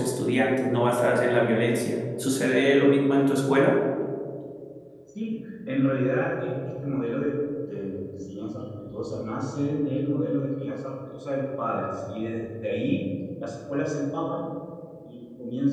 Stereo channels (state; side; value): identical; both; correlation 1.00